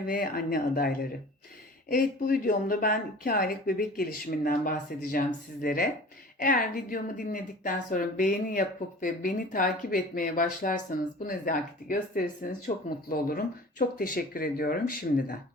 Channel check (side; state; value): both; normal; correlation 0.42